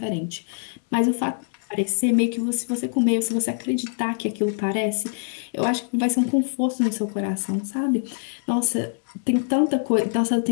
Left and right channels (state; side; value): silent; right; digital silence